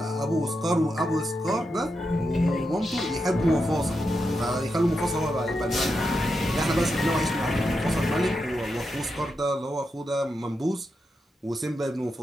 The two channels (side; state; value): both; normal; correlation 0.86